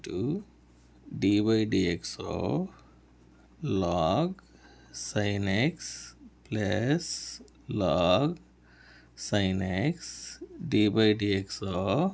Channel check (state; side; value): identical; both; correlation 1.00